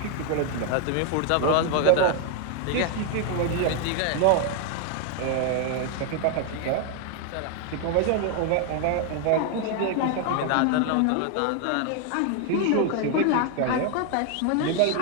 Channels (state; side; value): different; both; correlation 0.00